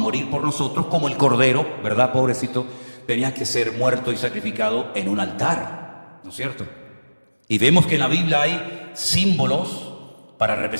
por nosotros como el Cordero, ¿verdad, pobrecito? Tenía que ser muerto y sacrificado en un altar, ¿no es cierto? Y vemos que en la Biblia hay símbolos para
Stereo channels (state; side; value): inverted; both; correlation -1.00